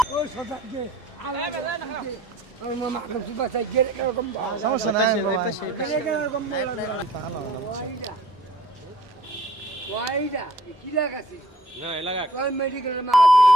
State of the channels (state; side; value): normal; both; correlation 0.55